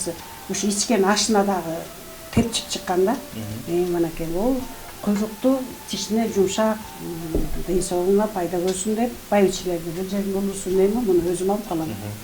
ушу ичкен ашына дагы тепчип чыккан да. Мынакей ол куйрукту тишине жумшак, ден соолугуна пайда көрсүн деп байбичелерди бул жердин улуусун эми муну өзүм алып калам.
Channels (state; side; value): identical; both; correlation 1.00